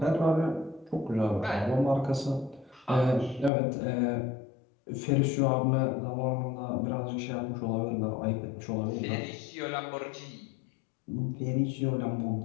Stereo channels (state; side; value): drops out; right; at 3.5 s